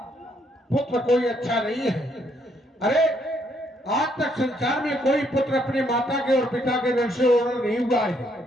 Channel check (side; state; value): both; normal; correlation 0.71